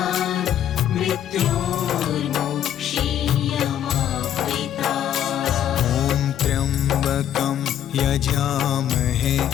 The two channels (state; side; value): quieter; right; 10.6 dB